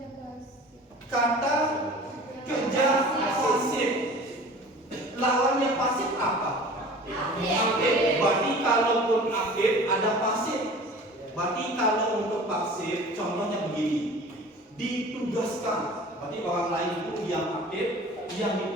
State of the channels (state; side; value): normal; both; correlation 0.42